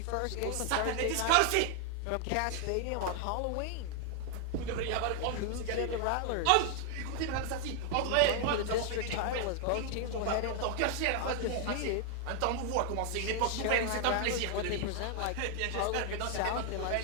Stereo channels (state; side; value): different; both; correlation 0.00